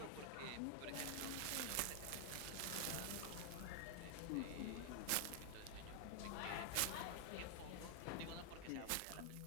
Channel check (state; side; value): different; both; correlation 0.00